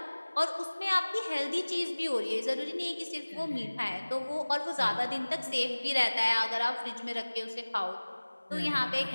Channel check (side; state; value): both; inverted; correlation -1.00